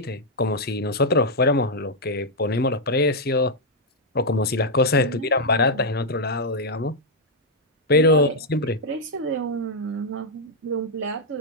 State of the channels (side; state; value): both; normal; correlation -0.03